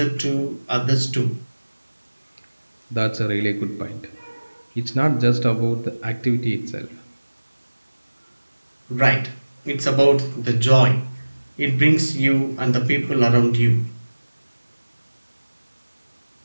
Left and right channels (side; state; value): both; inverted; correlation -1.00